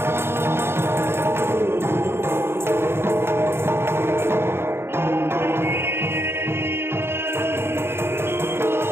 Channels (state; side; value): late; left; 0.12 ms